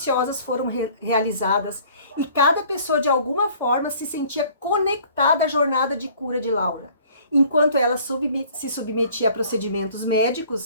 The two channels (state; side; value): inverted; both; correlation -0.53